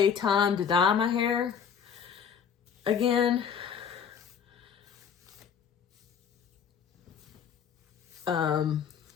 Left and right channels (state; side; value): quieter; right; 7.3 dB